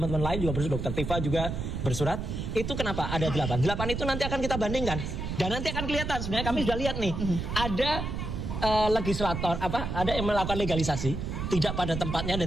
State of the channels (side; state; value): right; noise; rumble, 4 dB below the sound